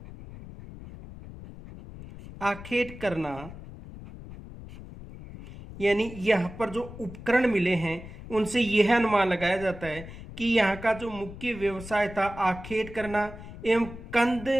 करना, यानी यहाँ पर जो उपकरण मिले हैं उनसे यह अनुमान लगाया जाता है कि यहाँ का जो मुख्य व्यवसाय था आखेट करना एवं कंद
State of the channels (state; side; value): noise; left; rumble, 14 dB below the sound